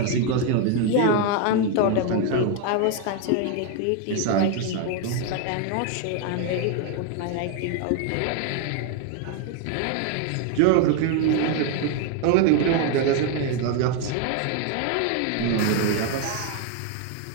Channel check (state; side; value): different; both; correlation 0.01